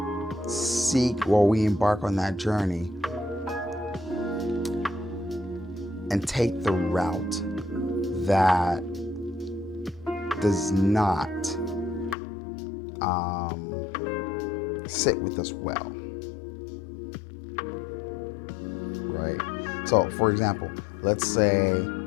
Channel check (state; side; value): drops out; right; at 12.2 s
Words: seek or we embark on that journey and take the route that does not sit with us well, right? So, for example, let's say